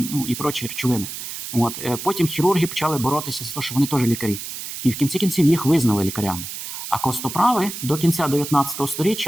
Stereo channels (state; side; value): noise; right; hiss, 8 dB below the sound